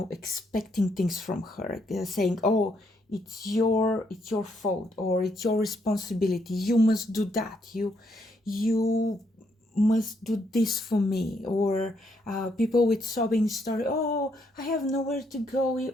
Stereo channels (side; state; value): both; normal; correlation 0.75